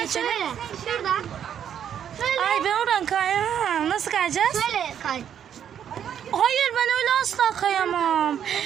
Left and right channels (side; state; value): left; quieter; 9.1 dB